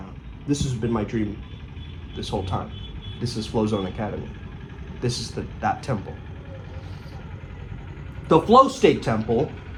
This has been my dream this whole time. This is Flow Zone Academy. This is that temple. The flow state temple,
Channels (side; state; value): both; identical; correlation 1.00